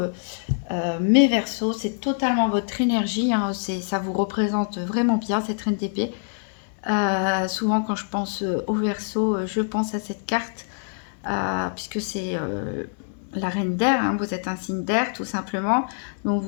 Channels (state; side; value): silent; right; digital silence